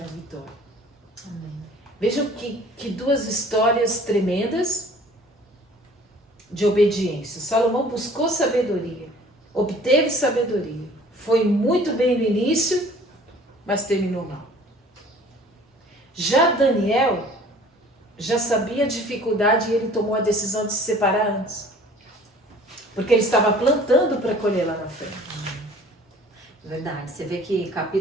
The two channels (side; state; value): both; normal; correlation 0.50